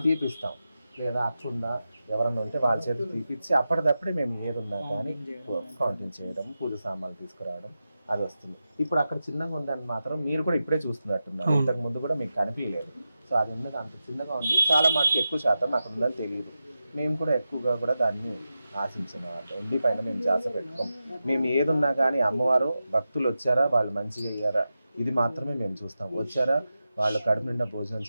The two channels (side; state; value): both; inverted; correlation -0.91